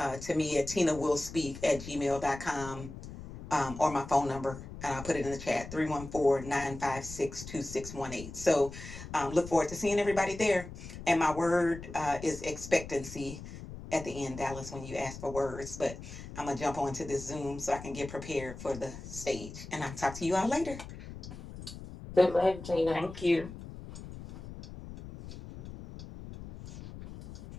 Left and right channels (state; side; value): noise; left; rumble, 12 dB below the sound